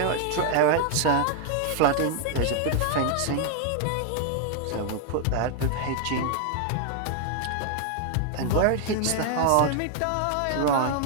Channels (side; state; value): both; different; correlation 0.00